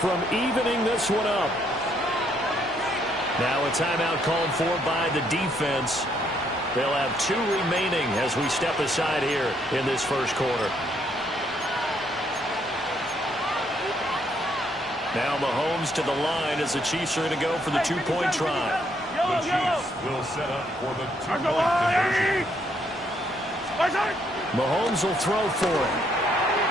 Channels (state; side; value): normal; both; correlation 0.71